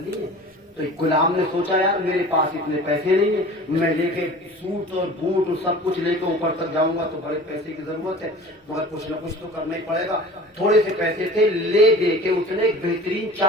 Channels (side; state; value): both; normal; correlation 0.41